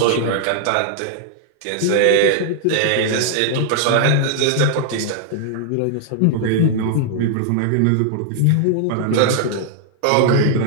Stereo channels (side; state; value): both; different; correlation -0.01